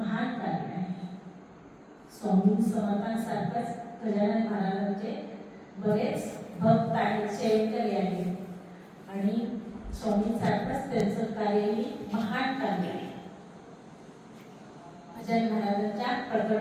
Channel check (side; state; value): both; identical; correlation 1.00